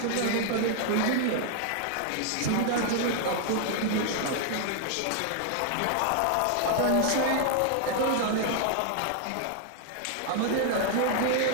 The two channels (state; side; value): different; both; correlation 0.00